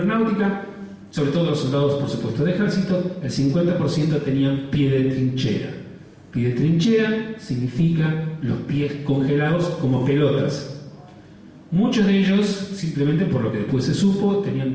sobre todo los soldados, por supuesto, de ejército, el 50% tenían pie de trinchera. Pie de trinchera significa los pies congelados como pelotas. Muchos de ellos, simplemente por lo que después se supo,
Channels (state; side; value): identical; both; correlation 1.00